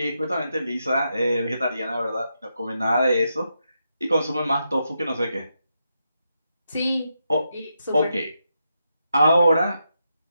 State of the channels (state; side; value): inverted; both; correlation -0.84